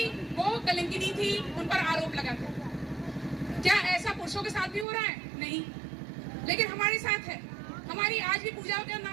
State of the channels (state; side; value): drops out; left; at 4.9 s